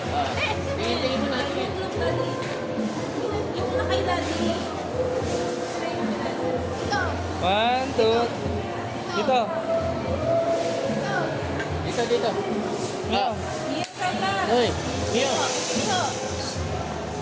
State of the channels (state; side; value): identical; both; correlation 1.00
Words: One, two. Dito. Dito. Mio. Hoy, Mio.